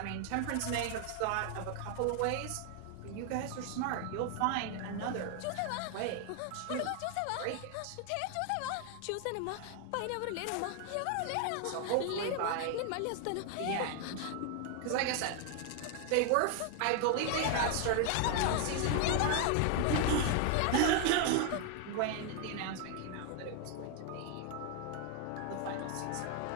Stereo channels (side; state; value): both; different; correlation 0.00